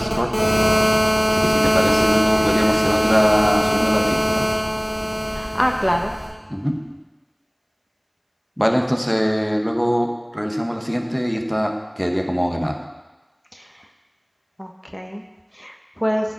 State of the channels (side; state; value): both; identical; correlation 1.00